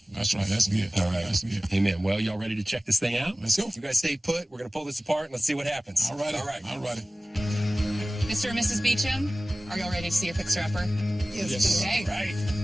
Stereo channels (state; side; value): normal; both; correlation 0.97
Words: That's right. That's good. All right. That's good. Amen. Well, y'all ready to check this thing out? Let's go. You guys stay put. We're going to pull this apart, and let's see what happens. All right. All right. All right. Mr. and Mrs. Beecham, are y'all ready to see your fixer-upper? Yes. Okay. Right.